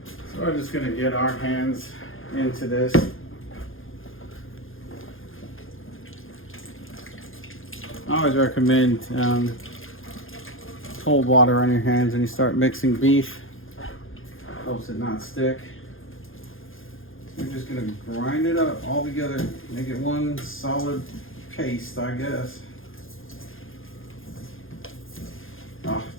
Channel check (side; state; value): right; late; 0.59 ms